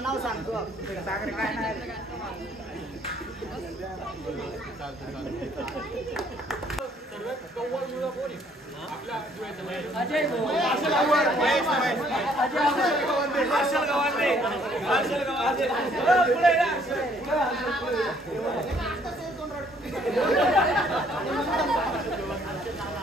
नाव सांगतो सागर काय नाही सर्वात कव्वळ मुलं कोण आहे आपल्या जुळ्याच्या?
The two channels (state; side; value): normal; both; correlation 0.63